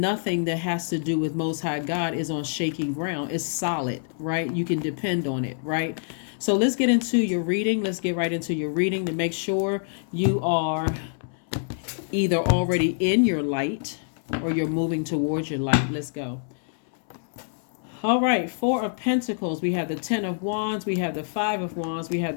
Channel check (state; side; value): silent; right; 61 dB below the other